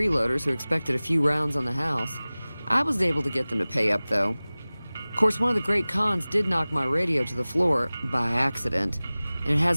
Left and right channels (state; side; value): inverted; both; correlation -0.99